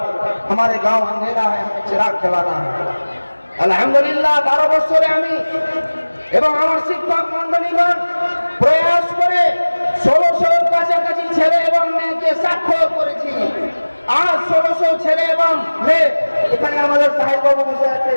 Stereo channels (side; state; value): both; inverted; correlation -1.00